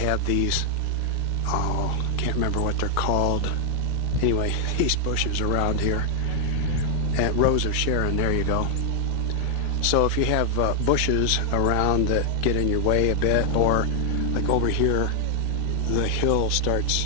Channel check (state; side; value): different; both; correlation 0.00